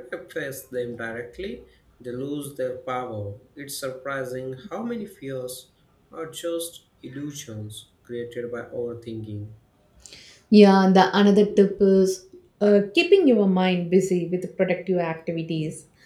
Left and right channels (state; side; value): identical; both; correlation 1.00